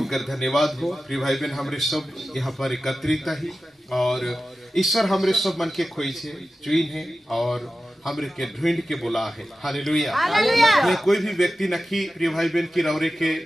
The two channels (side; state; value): both; normal; correlation 0.94